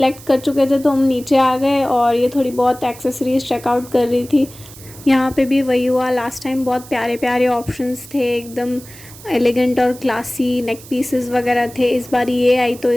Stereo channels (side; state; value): right; noise; hiss, 19 dB below the sound